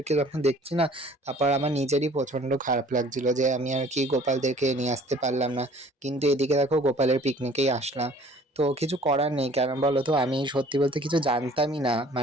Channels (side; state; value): both; normal; correlation 0.53